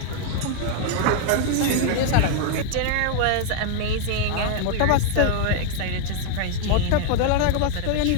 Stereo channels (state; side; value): different; both; correlation 0.00